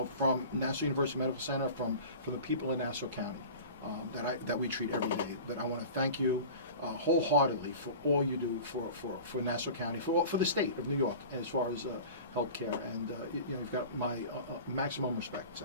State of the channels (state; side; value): inverted; both; correlation -0.38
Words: from Nassau University Medical Center, from the people in Nassau County, that we treat every day. But I want to thank you wholeheartedly for all you do for Nassau County, for the state of New York, as far as healthcare, and you've got my maximum respect,